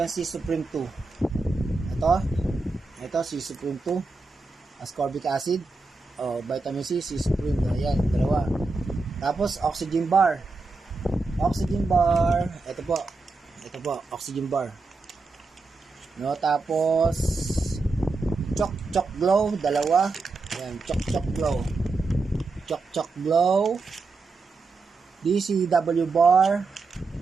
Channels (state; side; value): quieter; left; 3.8 dB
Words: yung C Supreme 2? Ito, C Supreme 2. Ascorbic acid. Vitamin C, C Supreme. Ayan, dalawa. Tapos, Oxygen Bar. Ito po, Oxygen Bar. No, tapos Choc Glow, dalawa. Ayan, Choc Glow. DCW Bar.